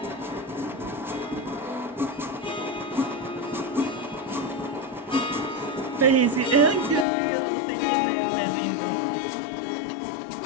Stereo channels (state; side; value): drops out; right; at 7.1 s